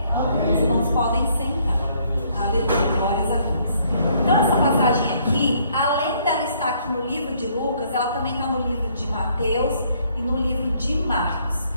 Amém. Os irmãos podem sentar. Aleluia, glórias a Deus. Então essa passagem aqui, além dela estar aqui no livro de Lucas, ela também está no livro de Mateus e no livro de Marcos.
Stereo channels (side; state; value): both; inverted; correlation -0.66